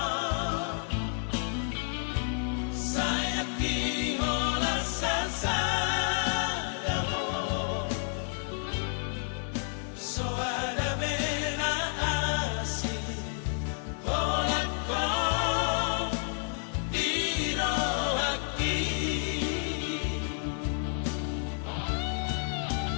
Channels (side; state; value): right; silent; 57 dB below the other